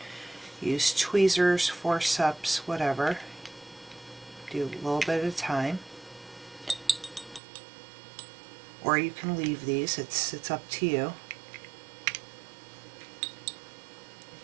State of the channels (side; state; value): left; drops out; at 7.4 s